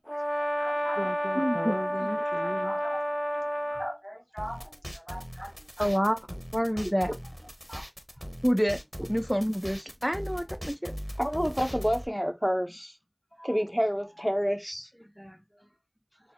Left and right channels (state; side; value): identical; both; correlation 1.00